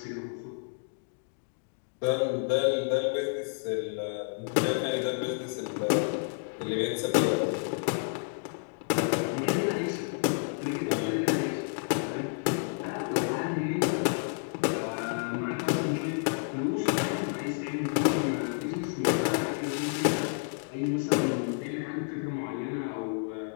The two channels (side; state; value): right; silent; 58 dB below the other